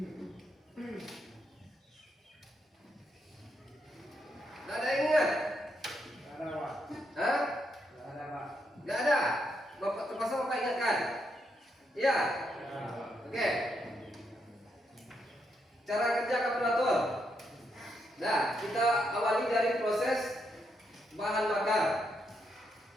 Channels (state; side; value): normal; both; correlation 0.79